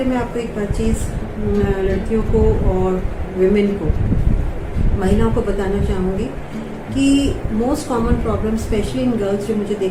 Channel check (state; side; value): identical; both; correlation 1.00